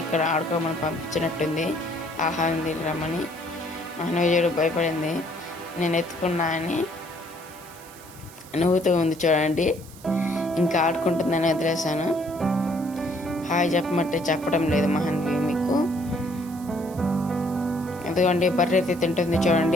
ఇక్కడ ఆడుకోమని పంపించినట్టుంది, ఆహారం తినరమ్మని. మహన్వి భయపడింది. నేను ఎత్తుకున్నా అని నవ్వుతూ ఉంది చూడండి. ఇంకా ఆడుకుంటుందని వదిలేసాను. హాయ్ చెప్పమంటే చెప్పడం లేదు మహన్వి మీకు. ఎందుకంటే బర్రె అయితే తింటుంది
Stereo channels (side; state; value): right; noise; hiss, 20 dB below the sound